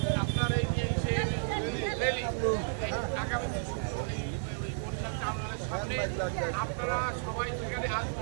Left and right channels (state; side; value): silent; left; digital silence